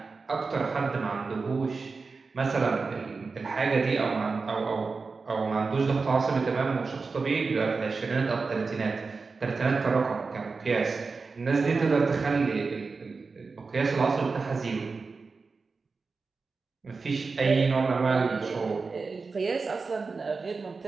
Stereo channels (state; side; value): quieter; left; 4.4 dB